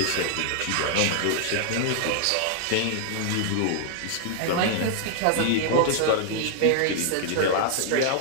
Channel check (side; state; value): both; different; correlation 0.00